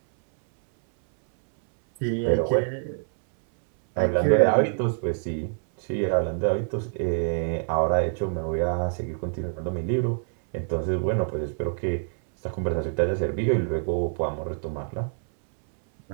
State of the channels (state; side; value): silent; left; 61 dB below the other